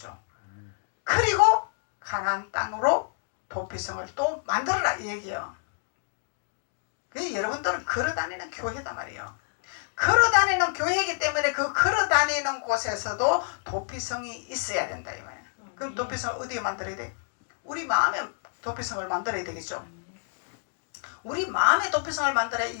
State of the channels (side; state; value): right; silent; digital silence